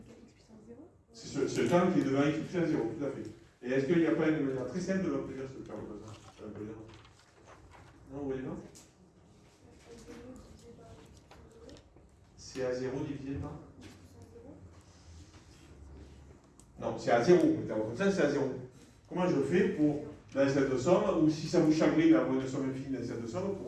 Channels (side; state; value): both; identical; correlation 1.00